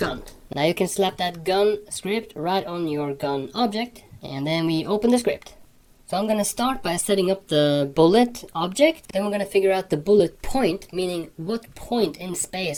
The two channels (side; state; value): both; identical; correlation 1.00